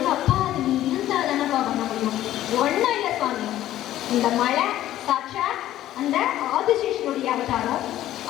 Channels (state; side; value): quieter; right; 13.4 dB